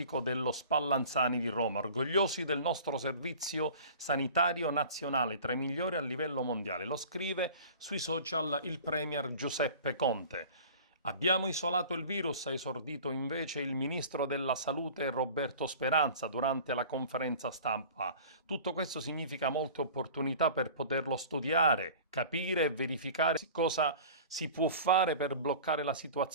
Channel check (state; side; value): inverted; both; correlation -0.42